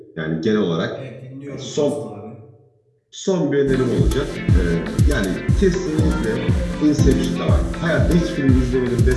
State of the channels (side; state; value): both; identical; correlation 1.00